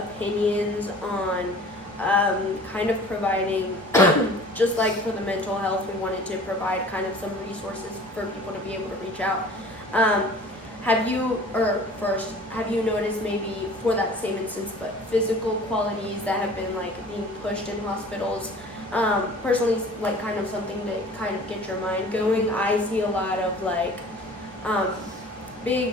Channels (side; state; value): both; normal; correlation 0.46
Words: on kind of providing, just like for the mental health, we wanted to provide kind of some resources for people to be able to reach out. Have you noticed maybe for that same instance, but physical qualities that have been like being pushed in hospitals? Personally, like kind of something to kind of get your mind going. I see a lot of like